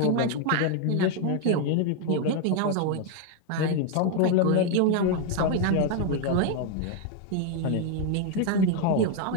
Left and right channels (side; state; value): both; different; correlation 0.01